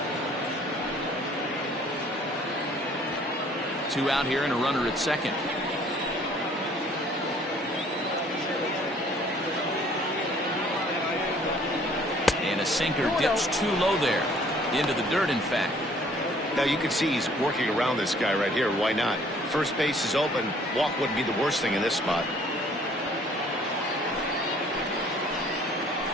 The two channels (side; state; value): both; normal; correlation 0.57